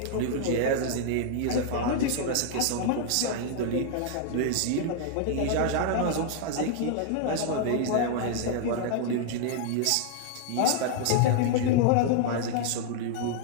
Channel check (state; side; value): different; both; correlation 0.00